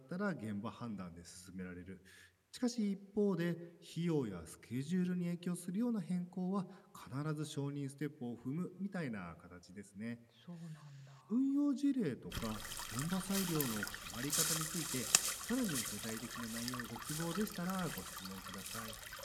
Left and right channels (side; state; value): both; identical; correlation 1.00